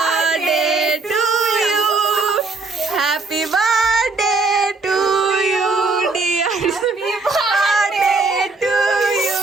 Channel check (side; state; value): left; quieter; 3.8 dB